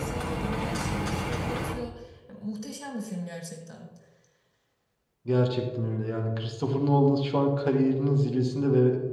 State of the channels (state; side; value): identical; both; correlation 1.00